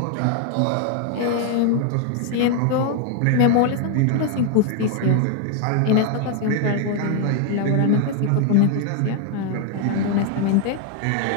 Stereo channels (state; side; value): different; both; correlation 0.00